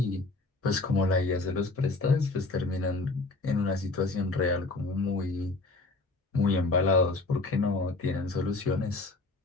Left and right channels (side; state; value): right; quieter; 3.3 dB